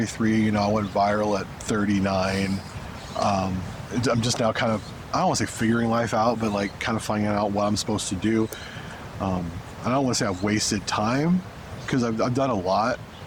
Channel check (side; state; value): both; identical; correlation 1.00